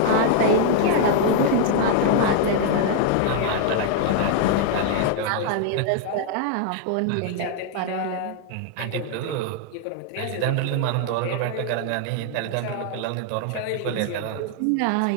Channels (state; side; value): different; both; correlation 0.00